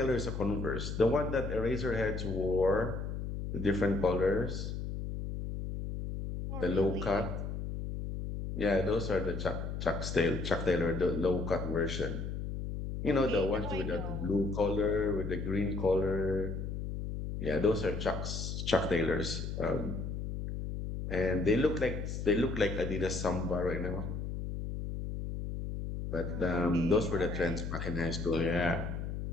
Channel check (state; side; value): noise; left; hum, 4 dB below the sound